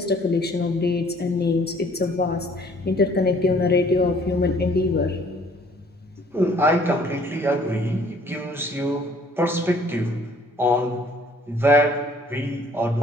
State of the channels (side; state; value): both; normal; correlation 0.58